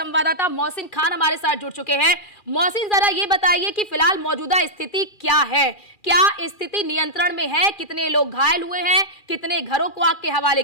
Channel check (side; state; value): right; late; 2.4 ms